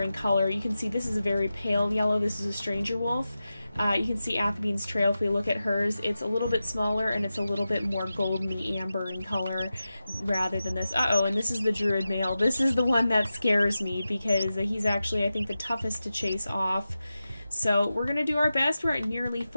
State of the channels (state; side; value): inverted; both; correlation -0.92